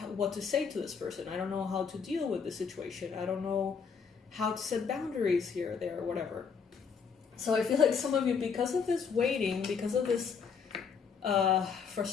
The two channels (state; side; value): quieter; right; 6.0 dB